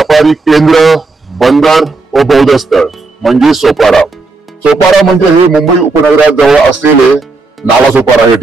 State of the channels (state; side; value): quieter; left; 3.7 dB